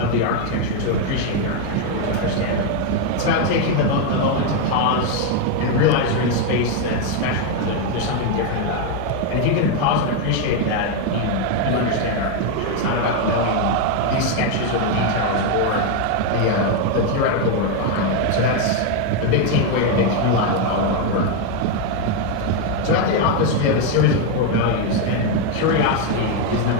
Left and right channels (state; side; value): different; both; correlation 0.01